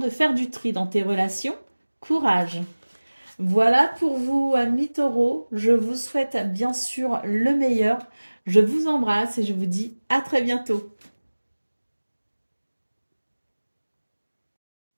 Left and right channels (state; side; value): inverted; both; correlation -1.00